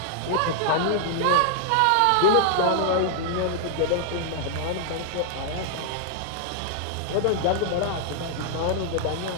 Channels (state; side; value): different; both; correlation 0.00